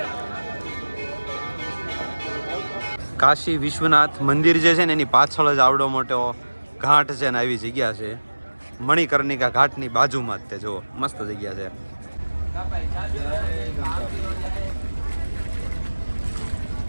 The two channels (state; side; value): inverted; both; correlation -1.00